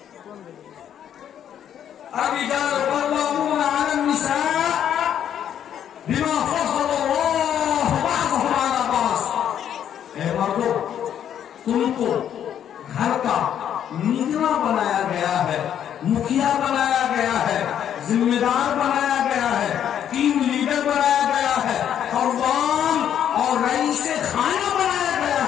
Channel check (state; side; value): quieter; right; 9.7 dB